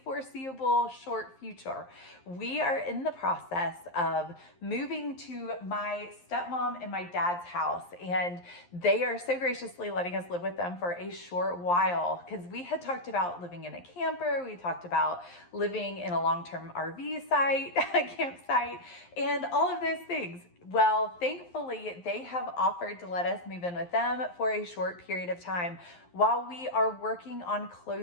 foreseeable short future. We are in the process of moving to my stepmom and my dad's house, and they are so graciously letting us live with them for a short while because we had talked about living in a camper. We talked about living in a long-term RV site, a campsite, and all of those things. Well, thankfully, they have offered to let us move in with them for a short period of time while we are working on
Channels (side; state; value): right; late; 11 ms